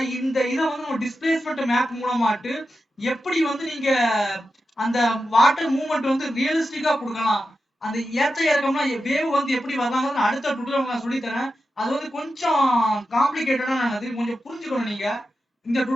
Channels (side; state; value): both; normal; correlation 0.90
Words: இந்த இதை வந்து நம்ம டிஸ்பிளேஸ்மெண்ட் மேப் மூலமாட்டு எப்படி வந்து நீங்க அந்த வாட்டர் மூவ்மெண்ட் வந்து ரியலிஸ்டிக்கா கொடுக்கலாம், அந்த ஏற்ற இறக்கம்னா வேவ் வந்து எப்படி வரலாம்னு அடுத்த டுட்டோரியல் நான் சொல்லி தரேன். அது வந்து கொஞ்சம் காம்ப்ளிகேட்டடானது, கொஞ்சம் புரிஞ்சுக்கணும் நீங்க. இந்த